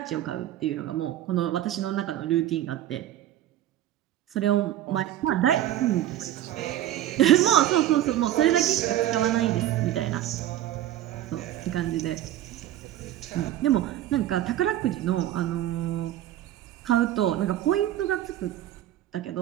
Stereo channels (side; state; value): left; quieter; 12.7 dB